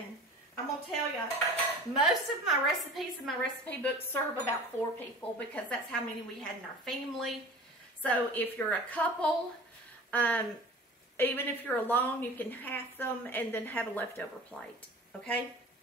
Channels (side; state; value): both; normal; correlation 0.40